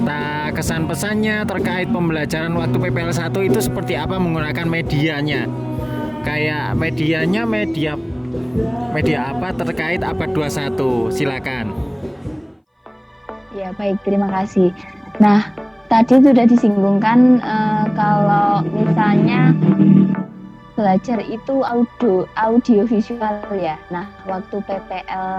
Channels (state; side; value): identical; both; correlation 1.00